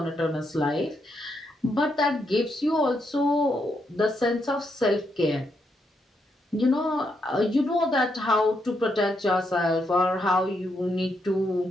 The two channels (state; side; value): normal; both; correlation 0.79